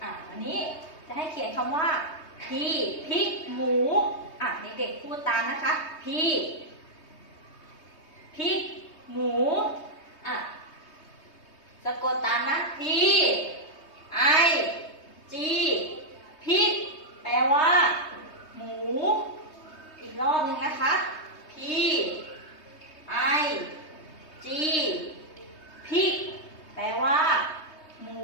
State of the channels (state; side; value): late; right; 3.2 ms